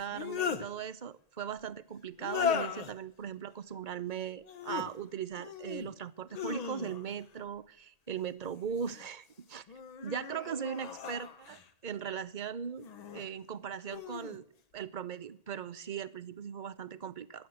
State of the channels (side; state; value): right; late; 1.8 ms